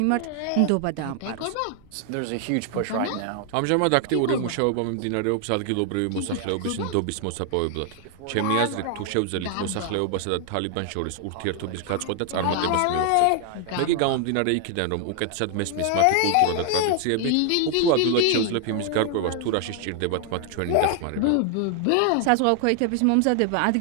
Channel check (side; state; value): both; different; correlation 0.00